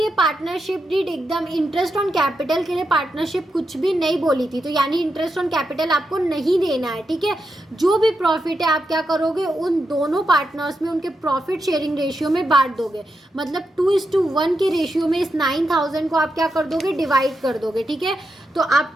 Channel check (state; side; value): normal; both; correlation 0.86